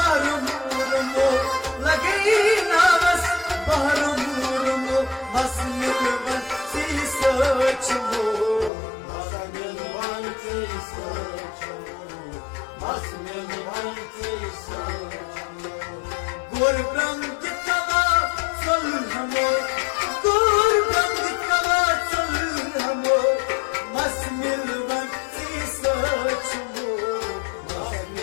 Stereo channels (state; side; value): drops out; right; at 8.7 s